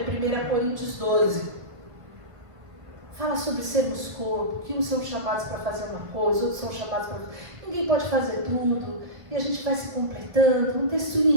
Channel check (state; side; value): late; left; 1.7 ms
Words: 1 Coríntios 12. Fala sobre sermos corpo, que uns são chamados para fazer uma coisa, outros são chamados para... Ninguém pode fazer tudo, e a gente vai se completando. Um texto